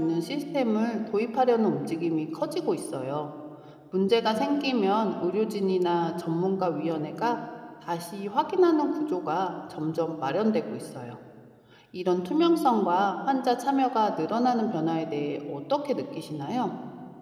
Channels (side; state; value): both; identical; correlation 1.00